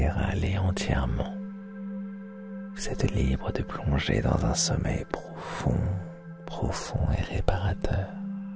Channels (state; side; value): identical; both; correlation 1.00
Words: aller entièrement. Vous êtes libre de plonger dans un sommeil profond et réparateur,